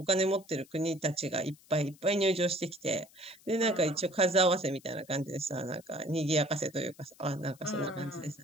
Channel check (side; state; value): left; noise; hiss, 26 dB below the sound